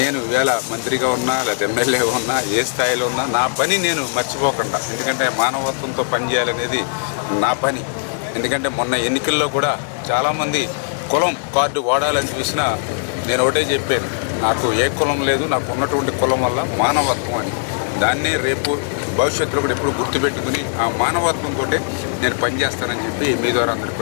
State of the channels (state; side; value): silent; right; digital silence